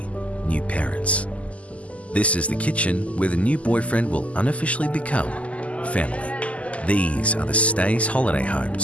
new parents. This is the kitchen where the new boyfriend will unofficially become family. These are the Stays holiday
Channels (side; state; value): right; late; 0.065 ms